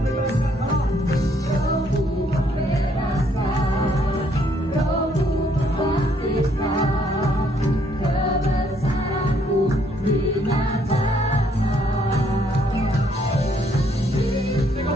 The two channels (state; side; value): normal; both; correlation 0.68